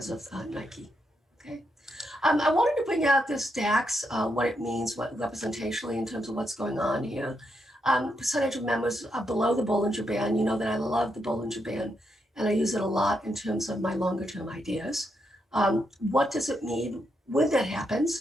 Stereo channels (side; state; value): both; normal; correlation 0.81